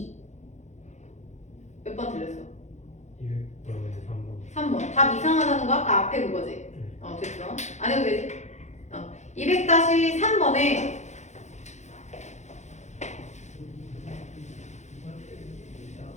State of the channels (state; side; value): late; right; 0.33 ms